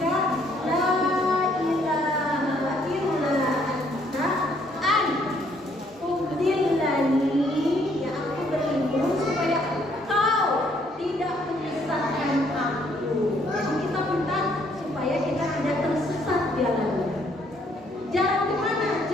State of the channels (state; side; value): normal; both; correlation 0.67